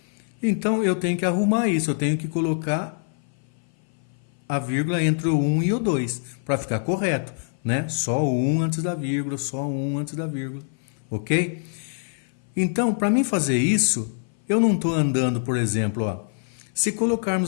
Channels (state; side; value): silent; right; 58 dB below the other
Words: Então, eu tenho que arrumar isso, eu tenho que colocar a vírgula entre o 1 e o 2, para ficar correto, né? Só o 1 antes da vírgula, só o 1 antes da vírgula, ok? Então, para mim fazer isso, eu não estou andando, por exemplo, ó, se